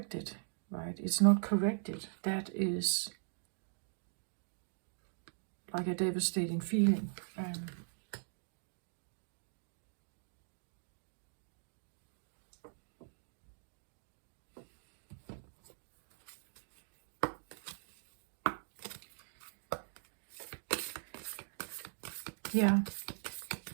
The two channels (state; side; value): silent; left; digital silence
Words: right? It's not corrected. That is like a devastating feeling. Yeah.